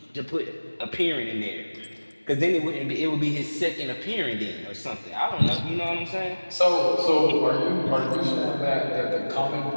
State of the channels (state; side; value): inverted; both; correlation -1.00